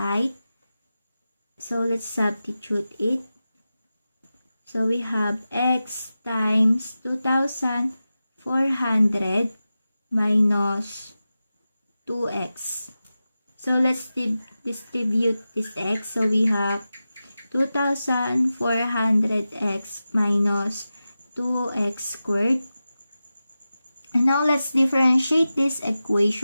So let's substitute it. So we have X times 2,400 minus 2X. So let's distribute this X. So we have 2,400X minus 2X squared. And now let's differentiate this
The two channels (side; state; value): both; inverted; correlation -0.93